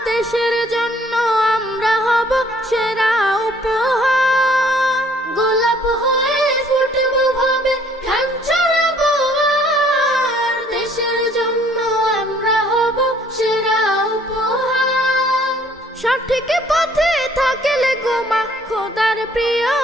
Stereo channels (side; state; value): both; normal; correlation 0.60